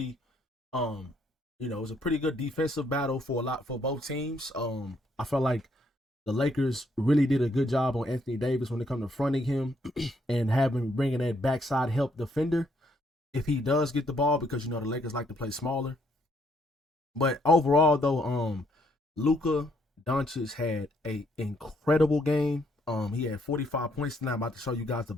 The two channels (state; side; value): normal; both; correlation 0.70